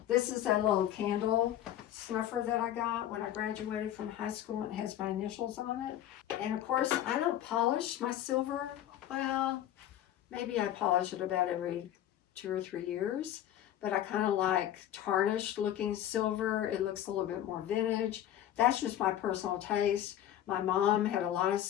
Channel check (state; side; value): quieter; right; 11.8 dB